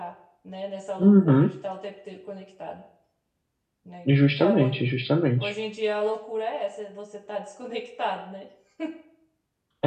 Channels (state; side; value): identical; both; correlation 1.00